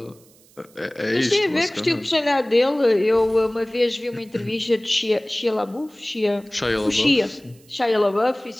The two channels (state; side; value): noise; right; hiss, 28 dB below the sound